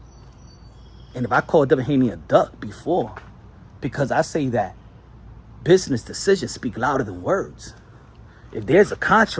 And if I called Devin Haney a duck before, because I say that business decisions speak louder than words. If there's a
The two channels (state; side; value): identical; both; correlation 1.00